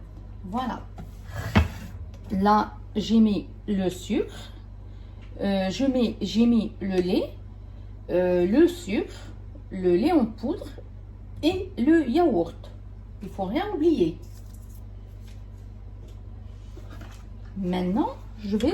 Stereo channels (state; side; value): identical; both; correlation 1.00